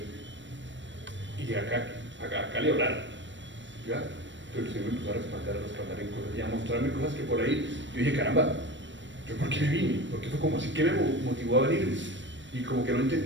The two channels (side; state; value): left; late; 0.54 ms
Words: Y acá le oraron. ¿Ya? Pero el Señor me empezó a respaldar en cosas y a mostrarme cosas que por ahí yo dije, caramba, ¿yo por qué me vine? Porque fue como así que me motivó a venir. Y como que no